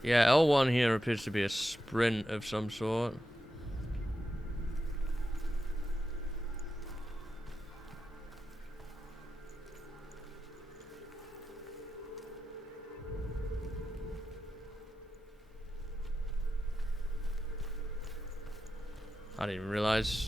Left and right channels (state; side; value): normal; both; correlation 0.90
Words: Yeah, L1 here appears to be a sprint of some sort. I didn't even